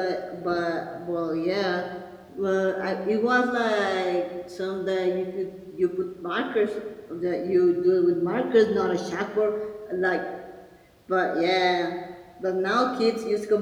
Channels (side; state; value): both; identical; correlation 1.00